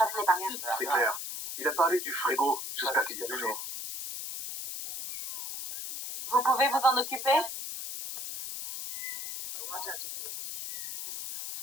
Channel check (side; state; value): left; noise; hiss, 6 dB below the sound